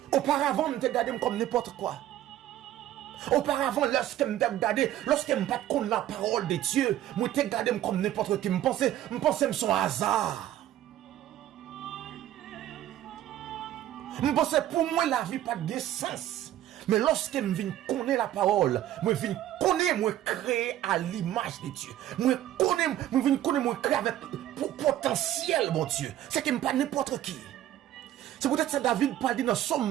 Auparavant, je me regardais comme n'importe quoi. Auparavant, lorsque je me regardais, lorsque je ne pas connaître la parole de Dieu, je me regardais comme n'importe qui. Je pensais que c'est un hasard. Je pensais pour moi, la vie n'a pas de sens. Mais lorsque je viens connaître la parole, je viens connaître, je créer à l'image de Dieu. Je viens connaître, je créer avec potentiel, mon Dieu. C'est que pas n'importe qui. C'est peut-être ça David parle dans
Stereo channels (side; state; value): left; quieter; 12.7 dB